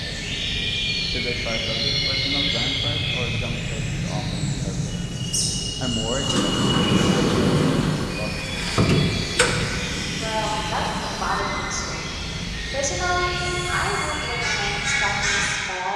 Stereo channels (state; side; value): identical; both; correlation 1.00